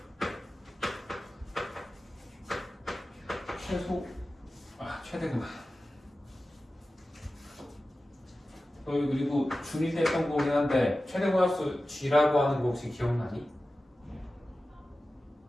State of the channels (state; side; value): normal; both; correlation 0.95